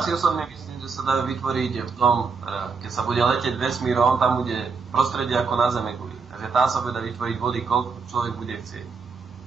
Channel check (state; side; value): quieter; left; 5.0 dB